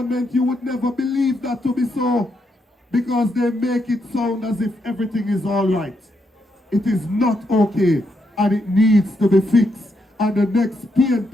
you would never believe that to be so, because they make it sound as if everything is all right. It is not okay, and it needs to be fixed. And the next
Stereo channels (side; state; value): both; normal; correlation 0.80